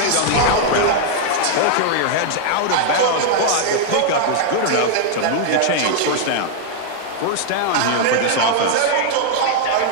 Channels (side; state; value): both; different; correlation -0.01